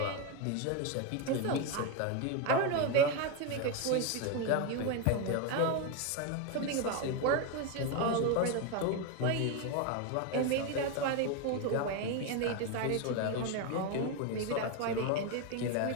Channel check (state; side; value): different; both; correlation 0.03